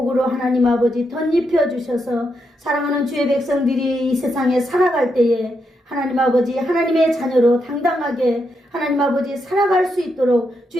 하나님 아버지 덧입혀 주셔서 사랑하는 주의 백성들이 이 세상에 살아갈 때에 하나님 아버지 하나님의 자녀로 당당하게 하나님 아버지 살아갈 수 있도록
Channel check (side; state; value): both; normal; correlation 0.82